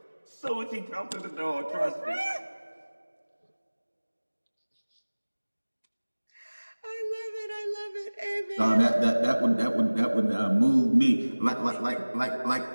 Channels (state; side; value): inverted; both; correlation -1.00